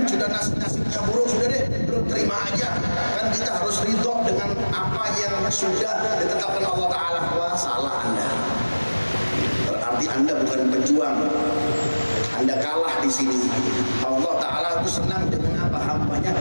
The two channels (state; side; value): inverted; both; correlation -1.00